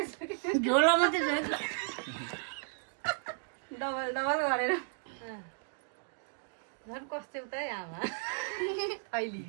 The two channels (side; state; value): left; silent; digital silence